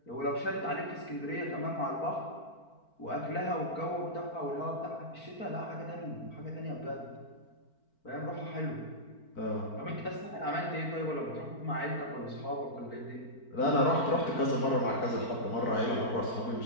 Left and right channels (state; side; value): late; right; 4.4 ms